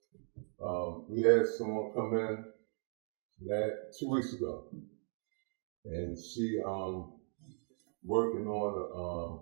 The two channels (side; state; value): left; silent; 52 dB below the other